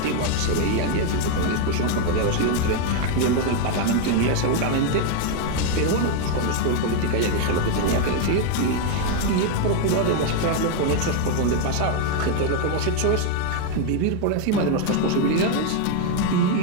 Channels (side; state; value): both; different; correlation 0.01